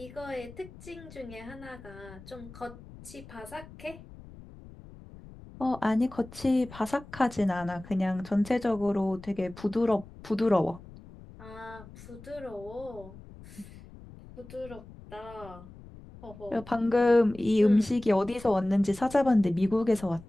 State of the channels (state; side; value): noise; left; rumble, 18 dB below the sound